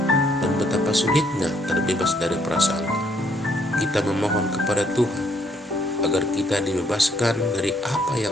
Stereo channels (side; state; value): both; normal; correlation 0.68